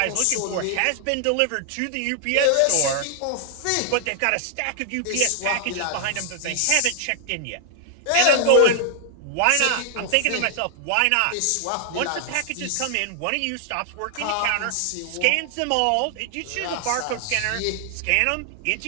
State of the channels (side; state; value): both; different; correlation 0.00